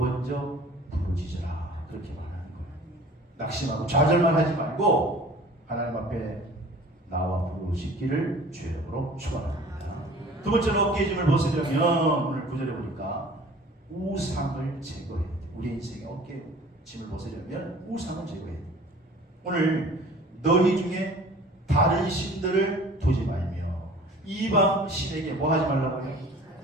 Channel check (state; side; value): normal; both; correlation 0.46